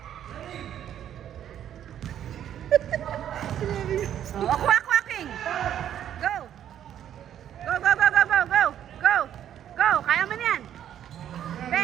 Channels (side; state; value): left; quieter; 10.3 dB